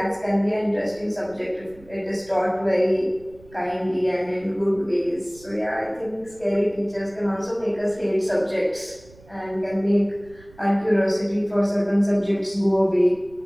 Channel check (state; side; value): noise; right; rumble, 24 dB below the sound